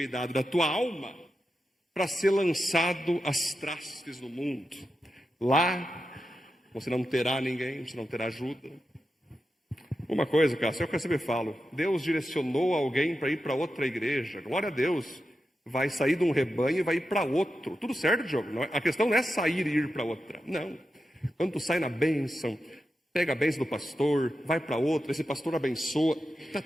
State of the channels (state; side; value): normal; both; correlation 0.89